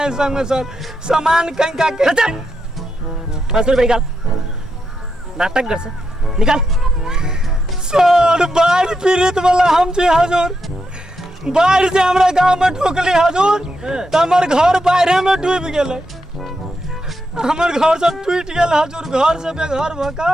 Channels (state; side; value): normal; both; correlation 0.84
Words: संग सर, सामान कहीं का के 500 रुपया निकाल। नाटक गर्छ, निकाल। सर बाढ़ पीड़ित वाला हम छी हजुर, बाढ़ से हमरा गांव में ठोकली हजूर तो हमर घर बाढ़े में डूब गेले। हमर घर सब टूट गेल हजूर, घर से बेघर